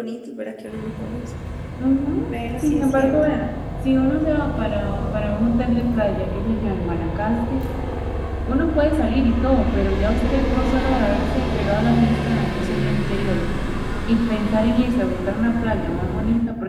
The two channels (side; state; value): both; identical; correlation 1.00